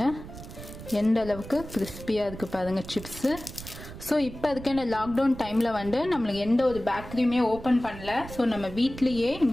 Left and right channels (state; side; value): noise; right; rumble, 13 dB below the sound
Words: எந்த அளவுக்கு கிறிஸ்பியாக இருக்குது பாருங்கள் சிப்ஸு. ஸோ இப்போ அதுக்கு இந்த லாக்டவுன் டைமில் நம்மளுக்கு எந்த ஒரு பேக்கரியுமே ஓப்பன் பண்ணல. ஸோ நம்ம வீட்லேயே